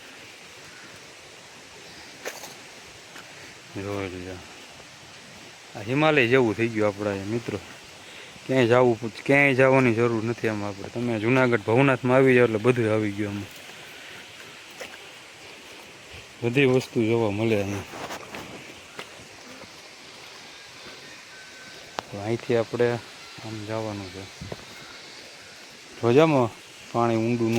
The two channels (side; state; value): both; identical; correlation 1.00